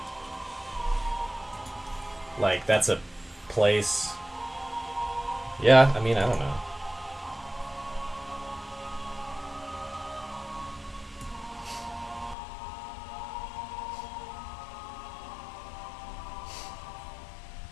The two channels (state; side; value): drops out; right; at 12.4 s